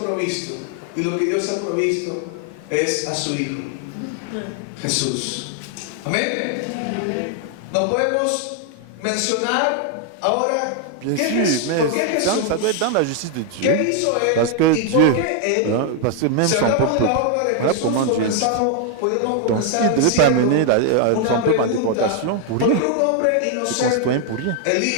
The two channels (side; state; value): both; different; correlation 0.00